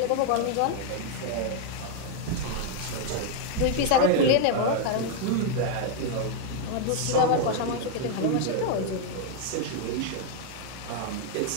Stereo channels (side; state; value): both; different; correlation 0.00